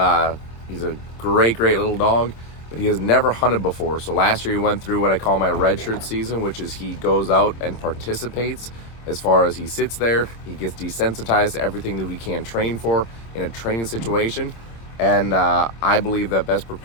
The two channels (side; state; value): right; late; 26 ms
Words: He's a great little dog, but he has never hunted before. So last year he went through what I call my redshirt season, which is he goes out and participates. As far as he sits there, he gets desensitized to everything that we can train for in a training situation. And I believe that best